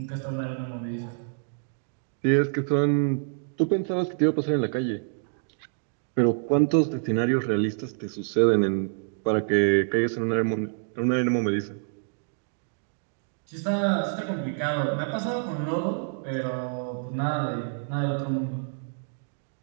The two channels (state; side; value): silent; left; digital silence